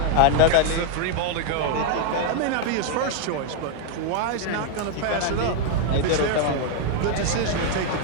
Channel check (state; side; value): different; both; correlation 0.00